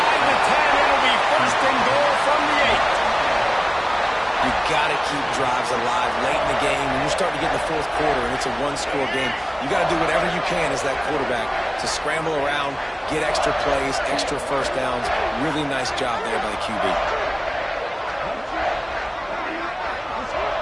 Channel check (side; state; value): both; identical; correlation 1.00